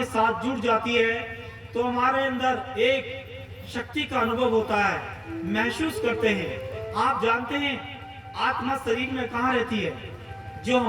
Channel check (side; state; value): both; identical; correlation 1.00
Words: साथ जुड़ जाती है तो हमारे अंदर एक शक्ति का अनुभव होता है, महसूस करते हैं। आप जानते हैं आत्मा शरीर में कहाँ रहती है? जो